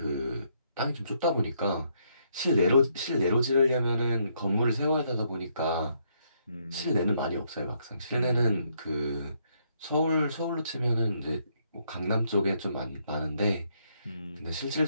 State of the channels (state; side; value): inverted; both; correlation -0.73